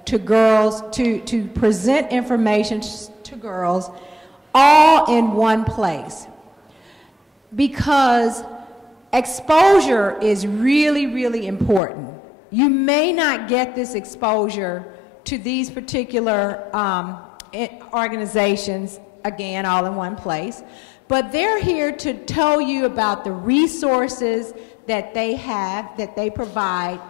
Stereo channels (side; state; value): right; drops out; at 11.8 s